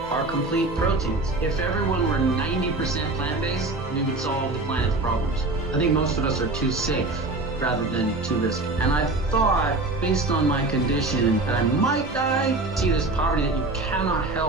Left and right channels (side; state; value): left; quieter; 3.1 dB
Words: are complete proteins. If everyone were 90% plant-based, we would solve the planet's problems. I think most of us are too safe rather than too risky. And I thought, based on my condition, that I might die. See this poverty that you cannot